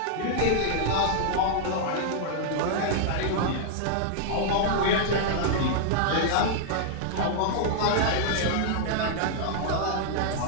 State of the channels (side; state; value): both; different; correlation -0.01